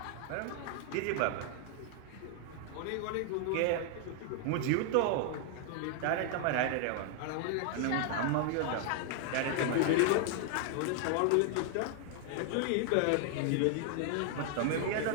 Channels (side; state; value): both; different; correlation 0.00